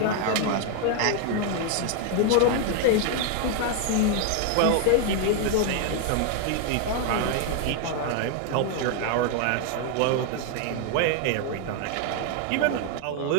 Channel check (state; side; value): different; both; correlation 0.00